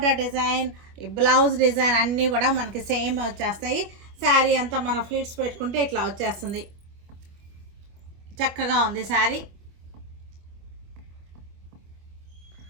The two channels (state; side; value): late; left; 25 ms